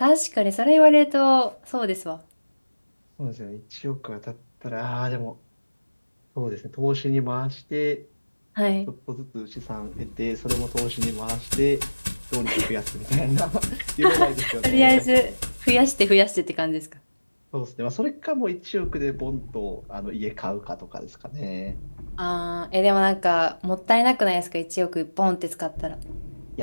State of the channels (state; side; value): inverted; both; correlation -1.00